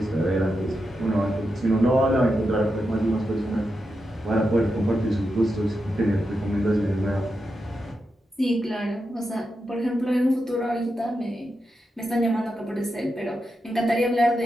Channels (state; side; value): normal; both; correlation 0.87